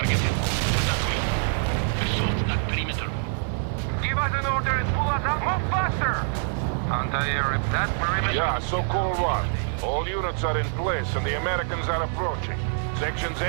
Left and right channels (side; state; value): left; silent; 61 dB below the other